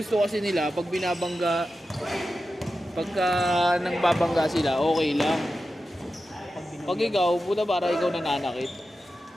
kasi nila, pag binabangga, pagka nang babangga sila, okay lang. Pag ikaw, puta para ikaw nananakit.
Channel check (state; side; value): normal; both; correlation 0.92